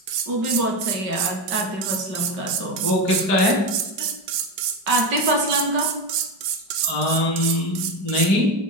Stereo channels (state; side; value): late; left; 5.0 ms